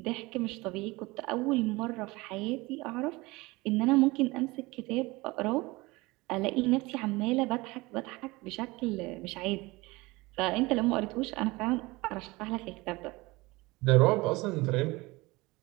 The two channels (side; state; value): left; quieter; 22.4 dB